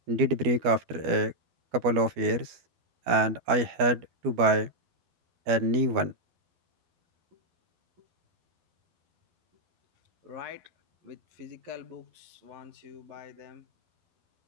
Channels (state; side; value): late; left; 12 ms